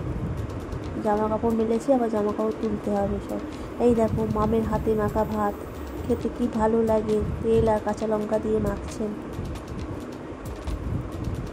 জামা কাপড় মেলেছে, আবার জামা কাপড় তুলতে হবে সব। এই দেখো মামের হাতে মাখা ভাত, খেতে কি ভালো লাগে, তেল আর কাঁচা লঙ্কা দিয়ে মাখছেন।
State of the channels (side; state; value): both; identical; correlation 1.00